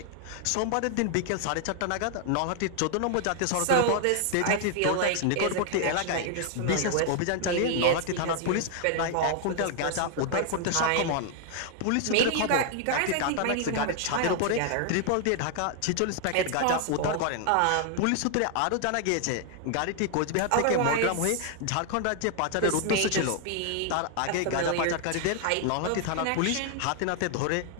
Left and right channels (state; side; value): different; both; correlation 0.00